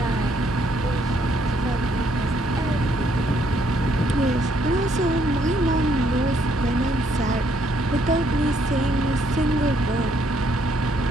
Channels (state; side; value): normal; both; correlation 0.70